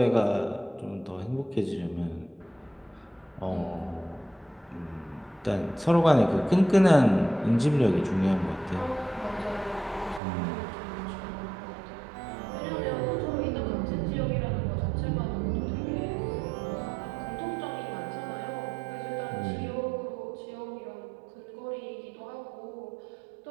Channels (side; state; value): left; drops out; at 10.2 s